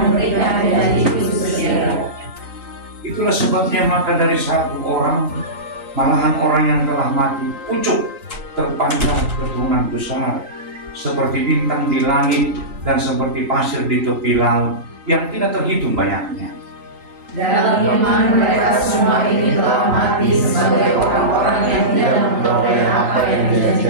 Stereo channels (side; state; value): left; late; 3.9 ms